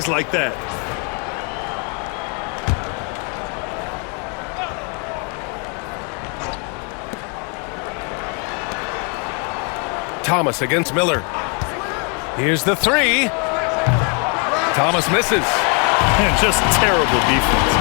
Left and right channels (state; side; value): quieter; right; 36.4 dB